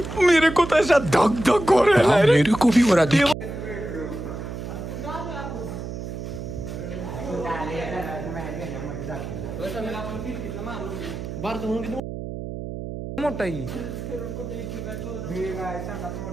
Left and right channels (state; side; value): noise; right; hum, 7 dB below the sound